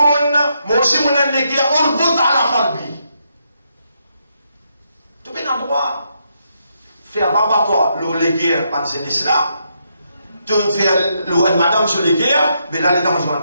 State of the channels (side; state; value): both; inverted; correlation -0.79